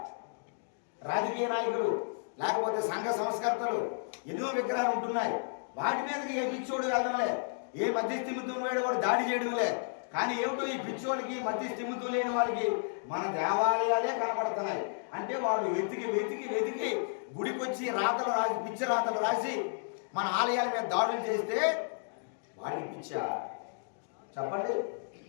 రాజకీయ నాయకులు లేకపోతే సంఘ సంస్కర్తలు ఎన్నో విగ్రహాలు ఉంటున్నాయి. వాటి మీదకి ఏ పిచ్చోడు వెళ్ళడంలే, ఏ మధ్యస్థిమితులు వేడు వాడు దాడి చేయడంలే. కానీ ఏమిటో ఈ పిచ్చోడికి మధ్యస్థిమితులు లేని వాళ్ళకి మన దేవాలయాలే కనబడుతున్నాయి. అంటే వాడు వెతికి వెతికి వెతికి గుడికొచ్చి రాతలు రాసి పిచ్చి రాతలు రాసి మన ఆలయాల మీద దాడులు చేస్తే వాడికి పిచ్చా? చెప్పండి.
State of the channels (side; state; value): right; silent; digital silence